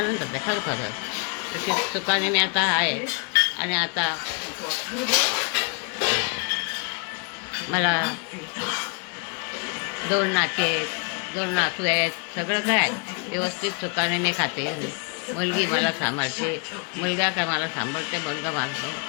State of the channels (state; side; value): quieter; right; 35.9 dB